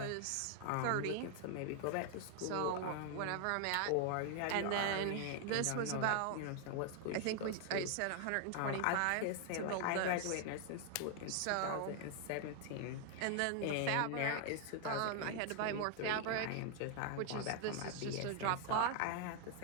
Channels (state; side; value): different; both; correlation 0.00